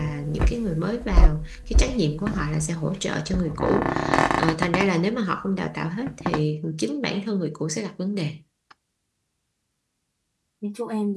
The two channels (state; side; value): identical; both; correlation 1.00